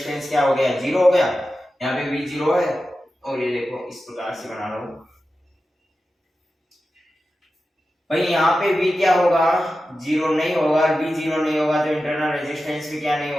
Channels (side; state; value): both; normal; correlation 0.93